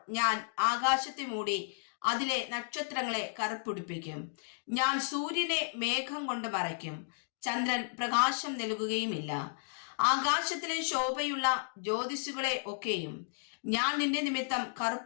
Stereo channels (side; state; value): right; silent; digital silence